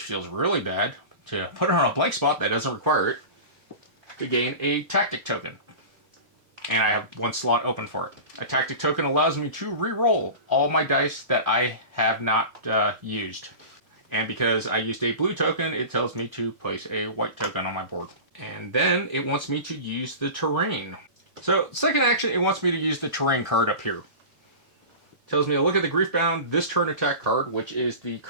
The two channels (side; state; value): left; late; 4.2 ms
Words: feels really bad, to put it on a blank spot that doesn't require it, to gain a tactic token. And I have 1 slot open for it. A tactic token allows me to re-roll all my dice that I have not used. And because I used a blue token, it tells me to place a white token on my board. And then it wants me to use the terrain. So, second action, it wants me to use the terrain card up here. It tells me to look at the Griefbound this turn attack card, which is the